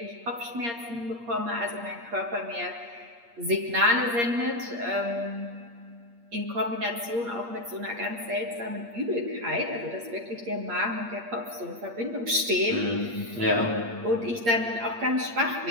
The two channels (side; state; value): left; late; 8.6 ms